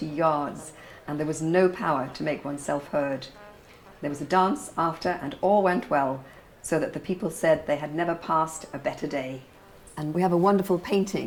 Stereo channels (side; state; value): both; identical; correlation 1.00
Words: yards, and there was no power to make oneself heard. There was a dance after, and all went well, so that the people said they had never passed a better day. And we have a wonderful